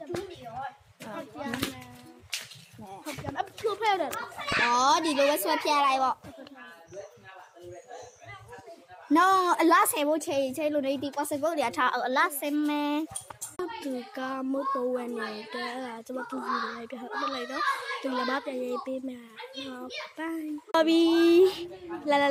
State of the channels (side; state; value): both; identical; correlation 1.00